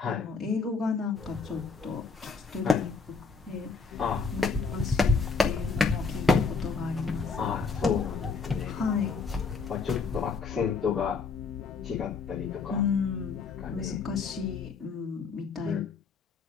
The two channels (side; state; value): right; quieter; 4.8 dB